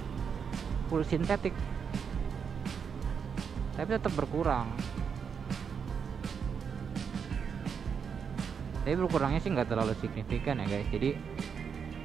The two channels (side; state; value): left; quieter; 6.6 dB